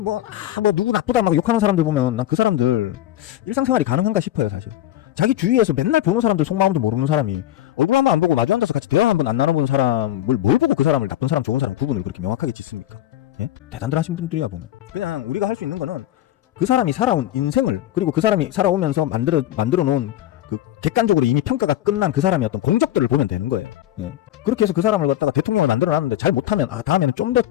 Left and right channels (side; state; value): right; quieter; 13.1 dB